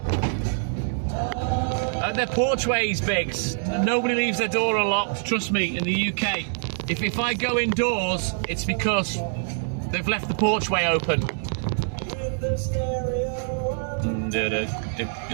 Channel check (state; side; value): silent; left; digital silence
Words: They're porchways, Biggs. Nobody leaves their door unlocked, trust me, in the UK. If I go indoors, it's because they've left the porchway open. With the stereo on. Magic's